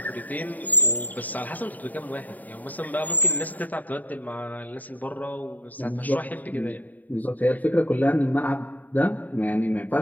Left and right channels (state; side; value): late; right; 0.081 ms